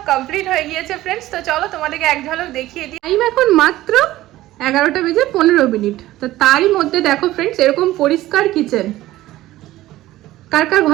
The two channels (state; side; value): quieter; left; 15.8 dB